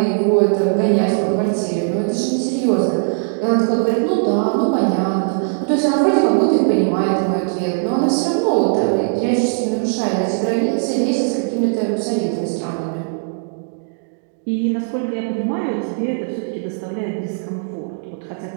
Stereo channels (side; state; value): left; silent; digital silence